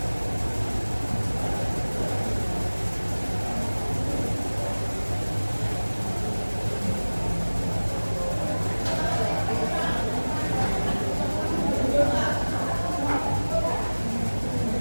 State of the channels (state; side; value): inverted; both; correlation -1.00